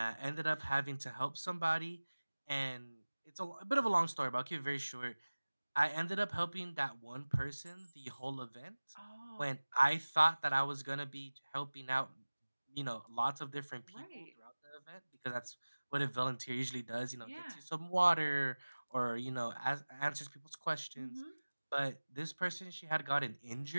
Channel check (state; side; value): inverted; both; correlation -1.00